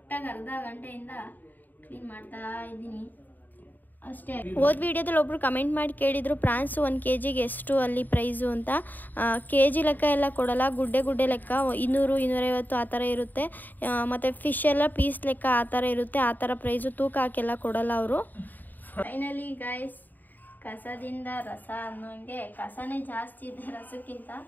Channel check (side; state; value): right; late; 0.087 ms